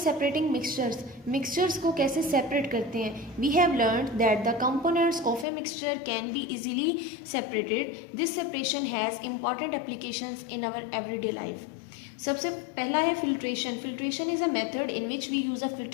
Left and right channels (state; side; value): drops out; right; at 5.5 s